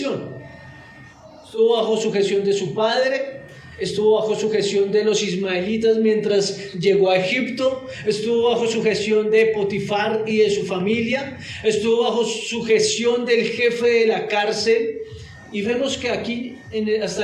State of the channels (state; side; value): identical; both; correlation 1.00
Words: Estuvo bajo sujeción de su padre, estuvo bajo sujeción de los ismaelitas mientras llegó a Egipto, estuvo bajo sujeción de Potifar y de su familia, estuvo bajo sujeción del jefe de la cárcel, y vemos que aquí hasta